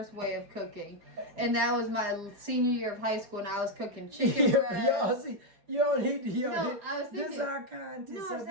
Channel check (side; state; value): left; late; 4.9 ms